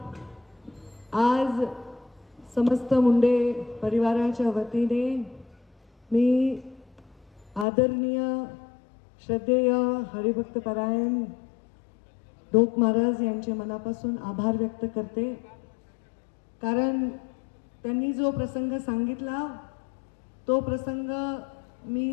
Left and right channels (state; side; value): drops out; right; at 7.7 s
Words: आज समस्त मुंडे परिवाराच्या वतीने मी आदरणीय श्रद्धेय हरिभक्तपरायण ढोक महाराज यांचे मनापासून आभार व्यक्त करते. कारण त्यांनी जो प्रसंग सांगितला तो प्रसंग